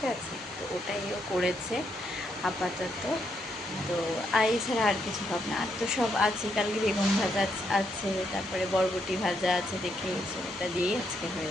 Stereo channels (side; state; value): both; normal; correlation 0.77